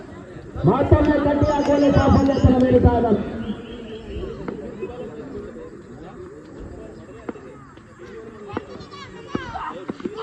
ಮತ್ತೊಮ್ಮೆ ಕಟ್ಟಿ ಹಾಕುವಲ್ಲಿ ಸಾಫಲ್ಯತನ ನೀಡುತ್ತಾ ಇದ್ದಾನೆ.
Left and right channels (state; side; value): identical; both; correlation 1.00